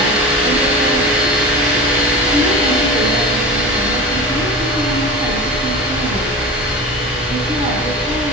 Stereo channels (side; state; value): both; normal; correlation 0.31